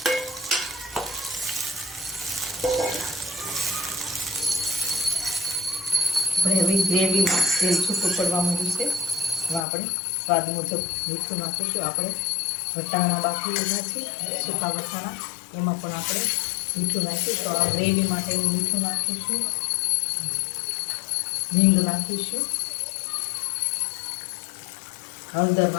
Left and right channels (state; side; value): drops out; right; at 9.6 s